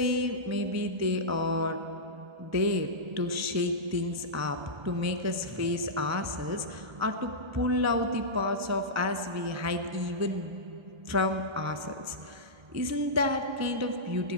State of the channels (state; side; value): late; left; 1.3 ms